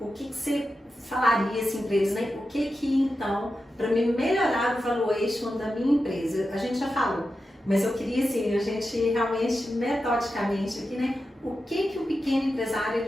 que você falaria assim para eles, né? O que então, para me melhorar o valuation da minha empresa? A gente já falou. Mas eu queria, assim, a gente realmente, metodicamente aqui, né? O que o pequeno empresário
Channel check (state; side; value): normal; both; correlation 0.90